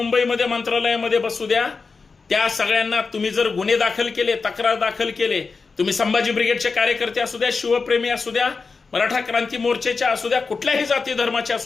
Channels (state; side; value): quieter; right; 4.6 dB